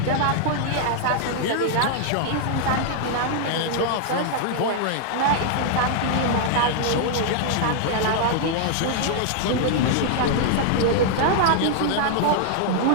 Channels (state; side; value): different; both; correlation 0.00